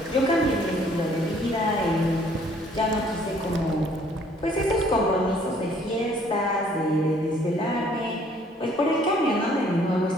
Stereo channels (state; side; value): normal; both; correlation 0.60